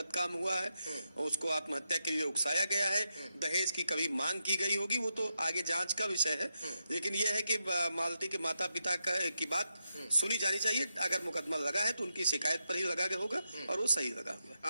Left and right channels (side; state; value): both; inverted; correlation -0.86